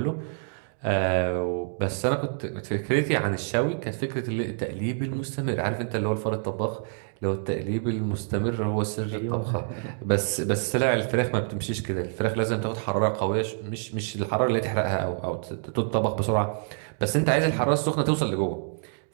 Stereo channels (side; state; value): left; silent; digital silence